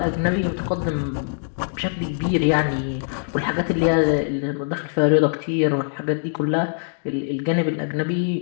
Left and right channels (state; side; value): silent; right; digital silence